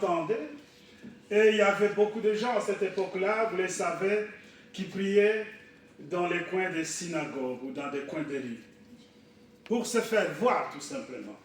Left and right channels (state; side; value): identical; both; correlation 1.00